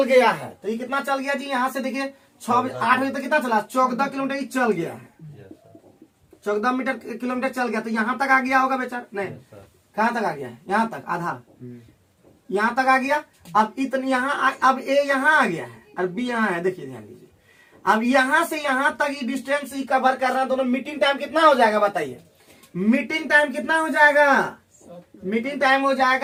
गया है, तो ये कितना चल गया जी, यहाँ से देखिए 6 बजे 8 बजे तक कितना चला, 14 किलोमीटर ही चल गया है, यस सर। 14 किलोमीटर चल गया। तो यहाँ तक आ गया होगा बेचारा, नहीं यस सर। कहाँ तक आ गया है, यहाँ तक आधा, यहाँ तक आ गया। अब इतनी यहाँ अब ए यहाँ आ गया है और बी यहाँ है, देखिए ध्यान दीजिए। अब यहाँ से यहाँ तक ये डिस्टेंस ही कवर कर रहा है दोनों। मीटिंग टाइम कितना हो जाएगा बताइए, मीटिंग टाइम कितना हो जाएगा, मीटिंग टाइम हो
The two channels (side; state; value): both; identical; correlation 1.00